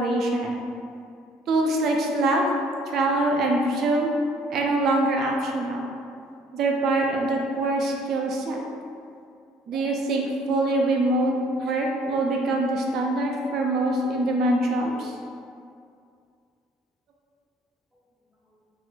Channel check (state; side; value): normal; both; correlation 0.58